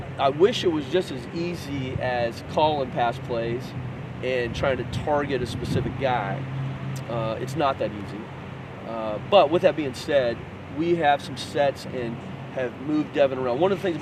I wish it was just as easy as calling pass plays and trying to target a specific guy. It's not that easy. But with that being said, we have some sets and have moved Devin around. One of the things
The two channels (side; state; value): both; identical; correlation 1.00